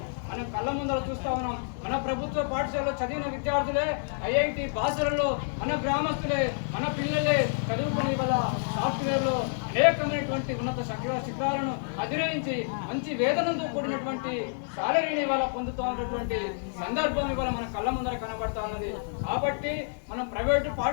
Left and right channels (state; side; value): silent; right; 59 dB below the other